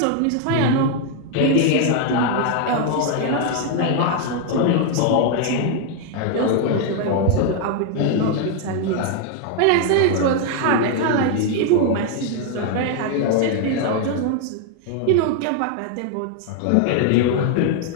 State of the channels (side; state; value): both; different; correlation 0.00